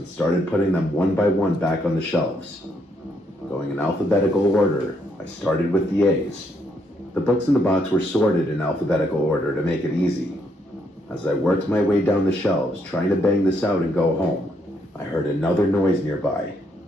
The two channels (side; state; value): both; normal; correlation 0.74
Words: started putting them one by one back on the shelves. Going in alphabetical order, I started with the A's. The books in the box were sorted in alphabetical order to make it easy. As I worked my way down the shelves, trying to bang this out and go home, I heard another noise nearby.